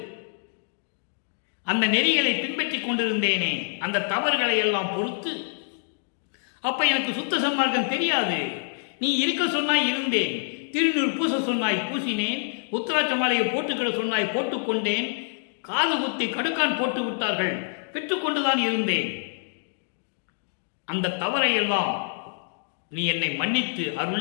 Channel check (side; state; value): right; silent; digital silence